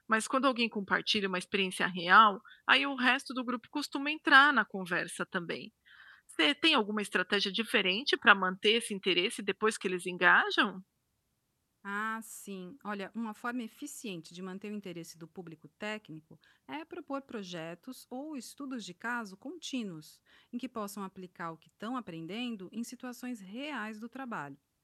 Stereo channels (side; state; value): both; identical; correlation 1.00